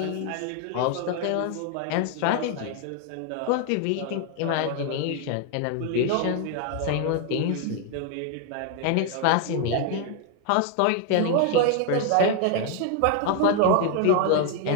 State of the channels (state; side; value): different; both; correlation 0.00